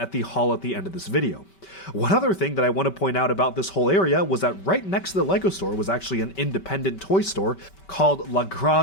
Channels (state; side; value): late; right; 5.2 ms